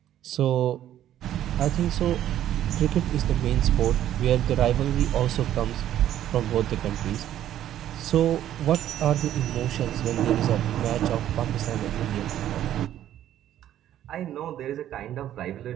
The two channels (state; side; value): quieter; left; 11.8 dB